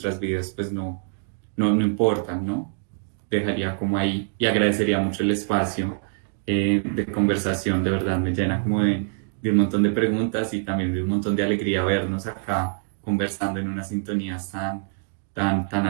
vidas pues no importan, ¿no? Dejaría como ahí, y agradecería mucho el espacio de conversación. De verdad me llena como de un montón de preguntas, y también de un montón de alegría vernos acá conversando en unas sintonías tan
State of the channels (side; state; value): left; silent; digital silence